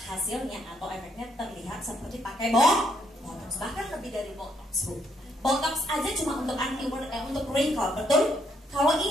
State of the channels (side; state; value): both; normal; correlation 0.73